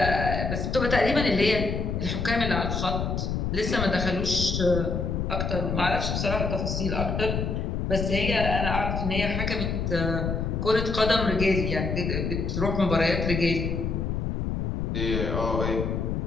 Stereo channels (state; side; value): noise; left; rumble, 1 dB below the sound